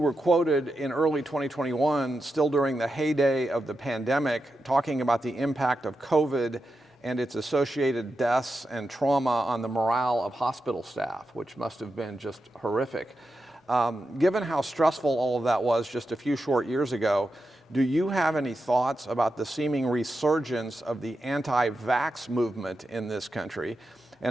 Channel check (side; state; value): both; normal; correlation 0.89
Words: quoted in early 2021, still during the heyday of the pandemic, talking about the impact of COVID and its associated deaths and trauma on the morale of hospital staff, which must have been just horrific. Given how stressful all of that was just a few short years ago, do you have any thoughts about the seeming resurgence of the anti-vax movement in this country?